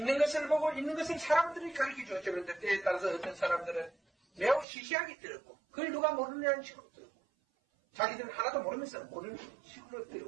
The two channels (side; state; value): left; drops out; at 4.7 s